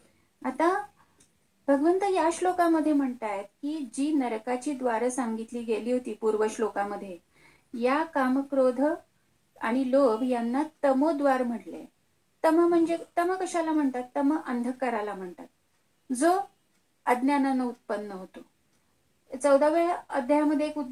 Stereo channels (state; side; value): identical; both; correlation 1.00